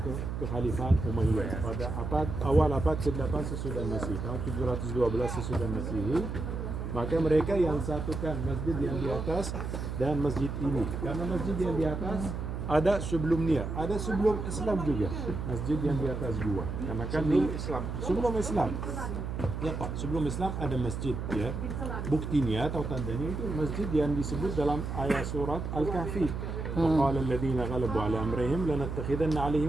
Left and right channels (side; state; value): right; noise; hum, 4 dB below the sound